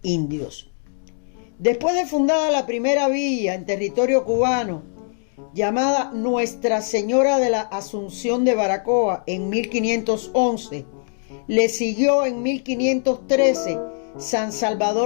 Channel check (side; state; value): right; silent; 61 dB below the other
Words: indios. Después de fundada la primera villa en territorio cubano, llamada Nuestra Señora de la Asunción de Baracoa en 1511, le siguió en 1513 San